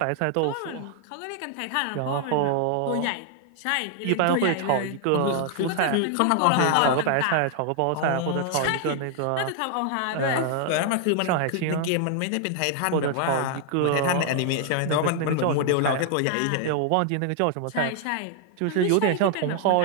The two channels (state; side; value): different; both; correlation 0.00